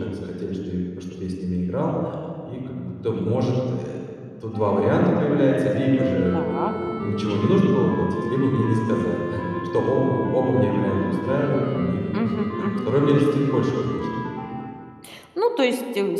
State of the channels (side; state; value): both; identical; correlation 1.00